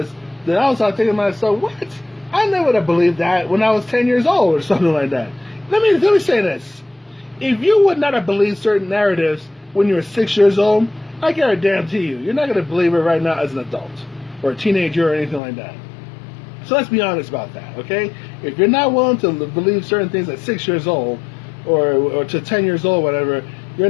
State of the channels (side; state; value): right; drops out; at 15.4 s